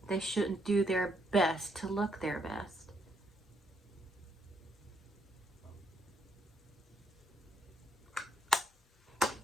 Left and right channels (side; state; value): both; normal; correlation 0.74